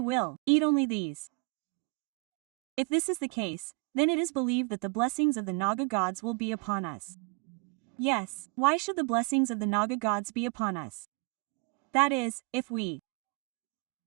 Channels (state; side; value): quieter; left; 31.1 dB